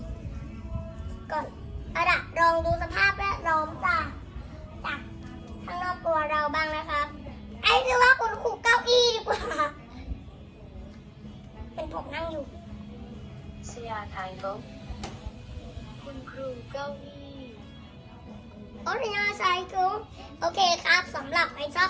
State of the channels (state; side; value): identical; both; correlation 1.00